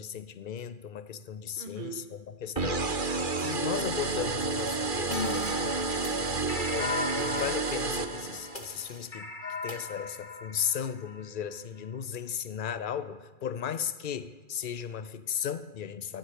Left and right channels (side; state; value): right; late; 2.4 ms